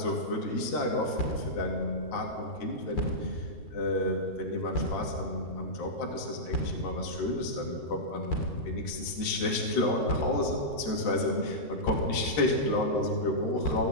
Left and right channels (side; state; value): right; late; 13 ms